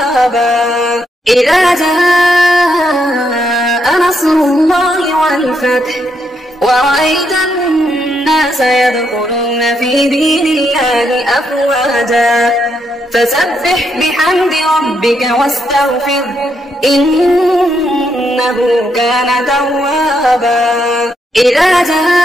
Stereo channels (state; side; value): normal; both; correlation 0.78